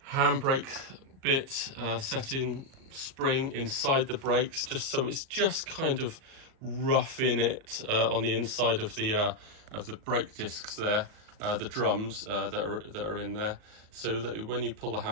handbrake bit setting spring inside the brakes, just so it's just kind of roughing it on the inside of the brake discs there, the drums that are in there, so that when you pull the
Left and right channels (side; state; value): left; late; 37 ms